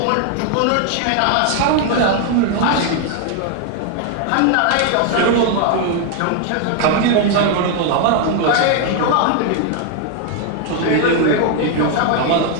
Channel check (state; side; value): different; both; correlation 0.00